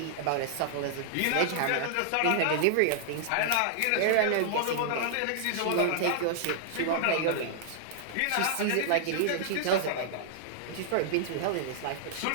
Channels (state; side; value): different; both; correlation -0.01